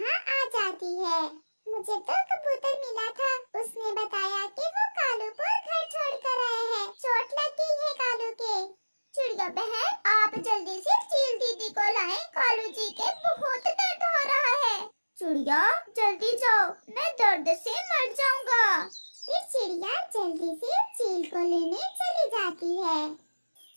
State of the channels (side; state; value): both; inverted; correlation -1.00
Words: आ जाती है। मुझे तो कबूतर मिला था, उसने बताया कि वो कालू को घर छोड़कर आए हैं। चोट लग गई है कालू के। चिड़िया बहन, आप जल्दी से चील दीदी को लाएं। कालू जी के बहुत दर्द हो रहा है। चिड़िया, जल्दी जाओ, मैं दर्द से मर जाऊंगा। फिर चिड़िया जल्दी से चील को लेने चली जाती है